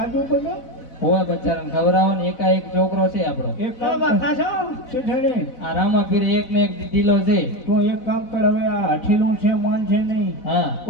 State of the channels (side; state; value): right; late; 4.0 ms